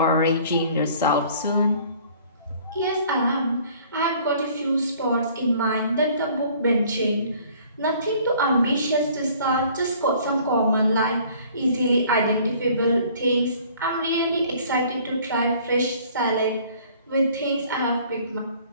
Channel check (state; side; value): inverted; both; correlation -0.54